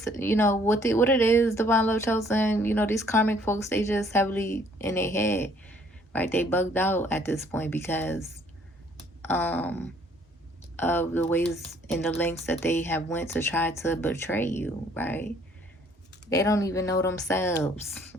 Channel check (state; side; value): normal; both; correlation 0.61